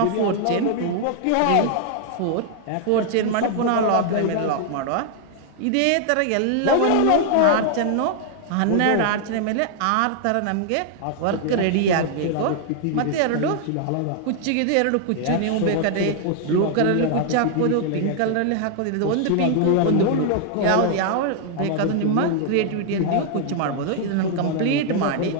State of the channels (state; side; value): different; both; correlation 0.00